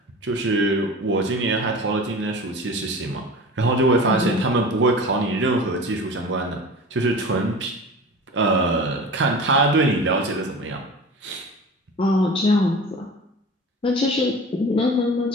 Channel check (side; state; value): both; normal; correlation 0.36